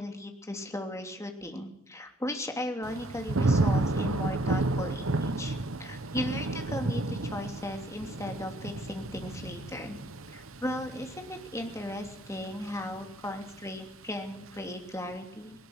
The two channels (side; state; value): both; normal; correlation 0.63